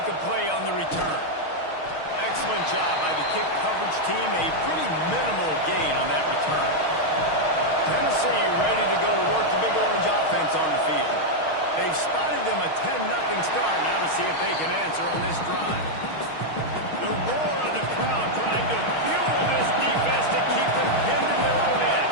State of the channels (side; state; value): right; late; 6.4 ms